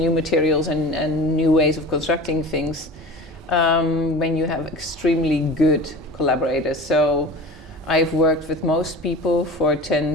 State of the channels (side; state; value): both; normal; correlation 0.36